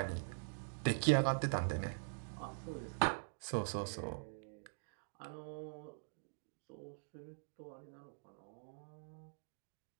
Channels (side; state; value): left; silent; digital silence